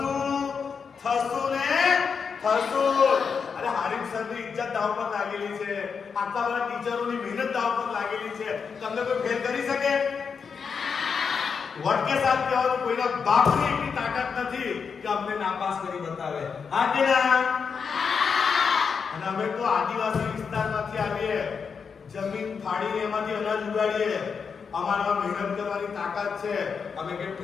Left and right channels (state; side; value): quieter; right; 6.0 dB